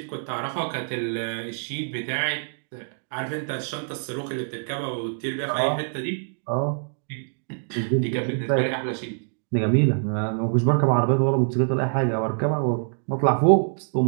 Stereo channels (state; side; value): silent; left; digital silence